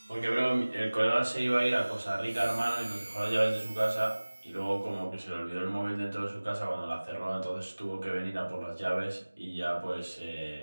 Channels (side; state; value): both; inverted; correlation -1.00